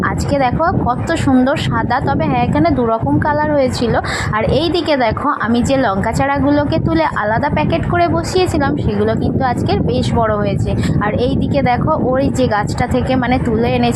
আজকে দেখো কত সুন্দর সাদা, তবে হ্যাঁ এখানে দুরকম কালার হয়েছিল। আর এই দিকে দেখো আমি যে লঙ্কা চারাগুলোকে তুলে আলাদা প্যাকেট করে বসিয়েছিলাম, সেগুলো কিন্তু আজকের বেশ বড় হয়েছে। আর এই দিকে দেখো ওই যে গাছটা থেকে তুলে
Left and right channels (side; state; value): both; identical; correlation 1.00